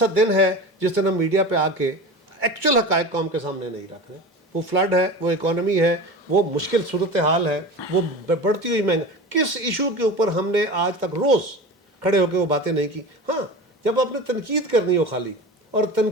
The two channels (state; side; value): normal; both; correlation 0.32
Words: دن ہے جس دن ہم میڈیا پہ آ کے ایکچوئل حقائق قوم کے سامنے نہیں رکھ رہے؟ وہ فلڈ ہے, وہ اکانومی ہے, وہ مشکل صورتحال ہے, وہ بڑھتی ہوئی مہنگا, کس ایشو کے اوپر ہم نے آج تک روز کھڑے ہو کے وہ باتیں نہیں کی؟ ہاں, جب آپ نے تنقید کرنی ہو خالی, اور